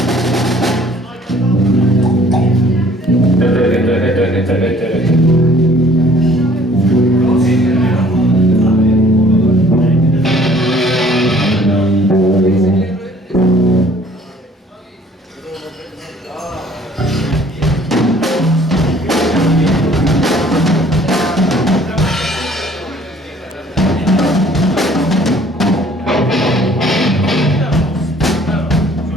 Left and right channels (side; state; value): both; normal; correlation 0.56